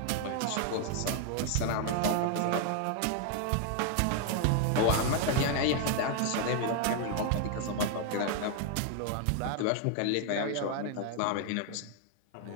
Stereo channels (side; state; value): both; different; correlation 0.00